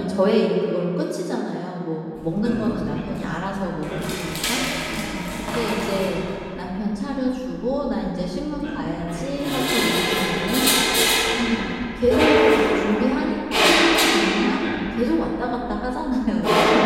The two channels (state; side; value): identical; both; correlation 1.00